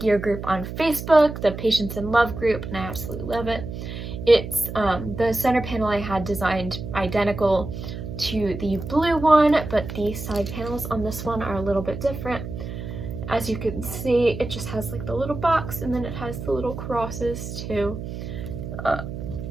group on Facebook, the Patience in Love group, and I absolutely love it. It's the center panel I had designed identical to the blue one, but the side panels on this one are a little bit different. As you can see, it just has like the little box, and then it has the little crosses too,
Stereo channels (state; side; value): noise; right; hum, 8 dB below the sound